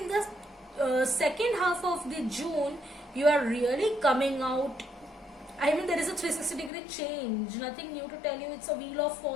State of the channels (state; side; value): drops out; right; at 6.7 s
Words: the second half of the June you are really coming out. I mean, there is a 360-degree change, nothing new to tell you. It's a wheel of